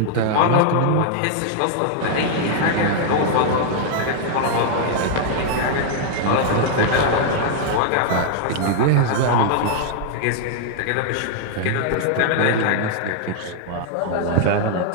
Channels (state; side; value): different; both; correlation -0.01